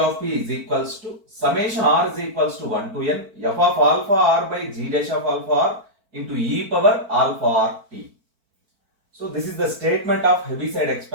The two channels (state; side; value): late; left; 4.5 ms